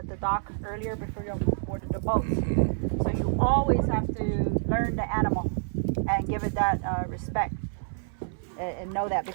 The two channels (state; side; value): silent; left; 59 dB below the other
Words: the dock earlier before you boarded the boat. So you always have to learn the animal and give it that respect and know that,